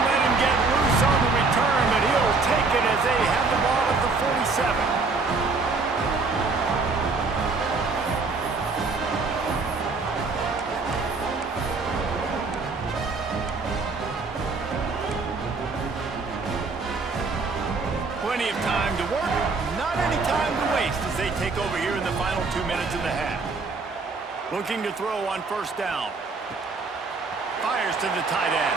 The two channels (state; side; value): quieter; left; 4.1 dB